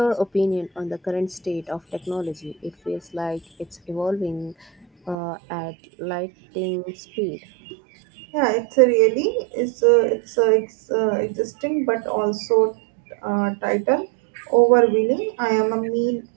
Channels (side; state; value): left; drops out; at 5.2 s